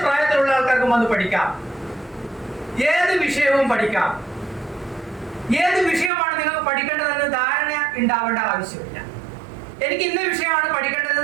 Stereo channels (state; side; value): drops out; left; at 6.1 s